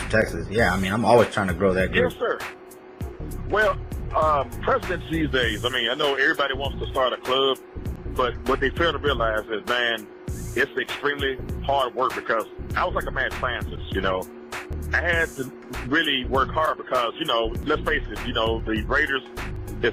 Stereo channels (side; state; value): both; identical; correlation 1.00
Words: Texas. Yeah, I mean, I'm always trying to grow that group. Yes, sir. Well, presidents these days, I mean, I know everybody wants to start a club, but what they fail to realize is, man, it's extremely hard work because I was like a mad scientist, you know. I had to really work hard because, you know, let's face it, you know, the Raiders